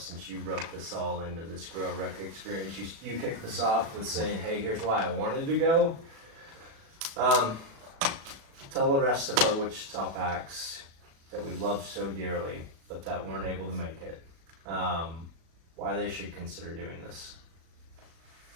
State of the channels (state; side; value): late; left; 36 ms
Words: since you wrote this all into this GROWRUCK experience. You kicked this off with saying, hey, here's why I wanted to go. Tell the rest of our Wichita Packs that we love so dearly, but that weren't able to make it, why they should consider doing this.